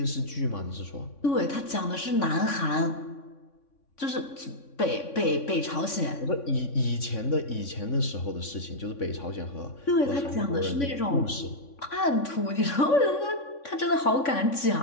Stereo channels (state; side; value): late; right; 3.6 ms